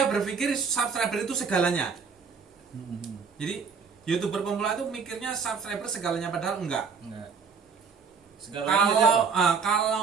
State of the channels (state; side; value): quieter; left; 5.7 dB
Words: berpikir subscriber itu segalanya. Jadi YouTuber pemula itu mikirnya subscriber segalanya padahal enggak.